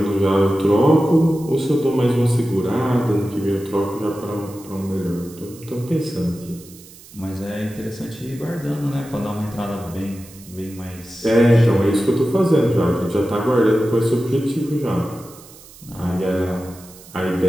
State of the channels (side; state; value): right; noise; hiss, 21 dB below the sound